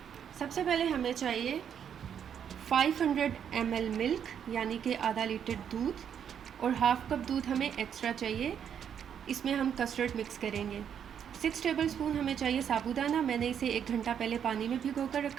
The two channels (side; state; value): left; quieter; 8.4 dB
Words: सबसे पहले हमें चाहिए 500 ml मिल्क यानी कि आधा लीटर दूध और हाफ़ कप दूध हमें एक्स्ट्रा चाहिए। इसमें हम कस्टर्ड मिक्स करेंगे। 6 टेबलस्पून हमें चाहिए साबूदाना। मैंने इसे 1 घंटा पहले पानी में भिगो कर